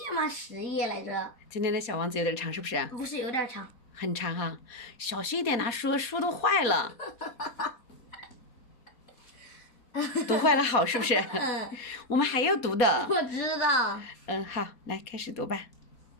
吗？10页来着。今天的小王子有点长，是不是？不是有点长。很长哈，小心一点拿书，书都坏了。读坏了好是不是？我们还要读的。我知道。好，来开始读吧。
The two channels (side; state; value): right; late; 4.2 ms